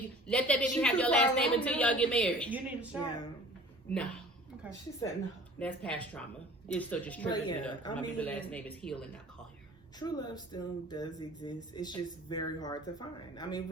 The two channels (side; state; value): both; normal; correlation 0.46